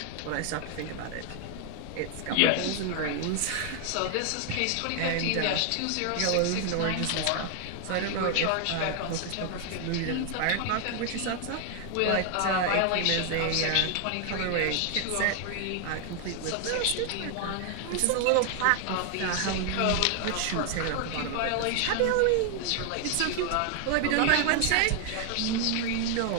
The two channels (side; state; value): both; different; correlation 0.00